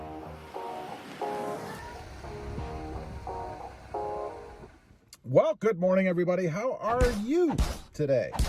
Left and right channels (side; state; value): both; identical; correlation 1.00